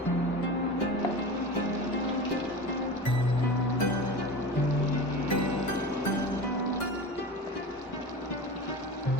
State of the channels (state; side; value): normal; both; correlation 0.31